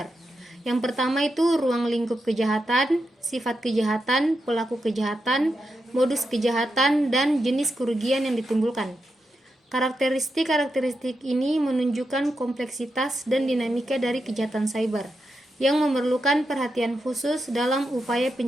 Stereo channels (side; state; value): both; normal; correlation 0.86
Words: Yang pertama itu ruang lingkup kejahatan, sifat kejahatan, pelaku kejahatan, modus kejahatan, dan jenis kerugian yang ditimbulkan. Karakteristik ini menunjukkan kompleksitas dan dinamika dari kejahatan cyber yang memerlukan perhatian khusus dalam upaya